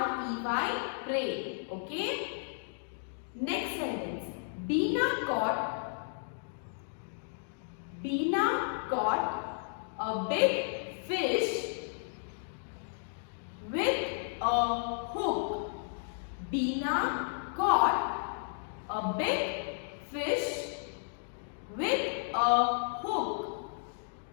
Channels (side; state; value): right; silent; digital silence